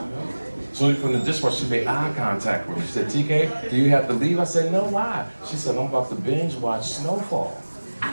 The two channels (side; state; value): both; inverted; correlation -1.00